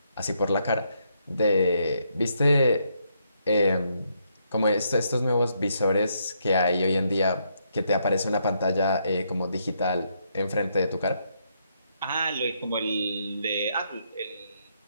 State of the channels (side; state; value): both; inverted; correlation -0.76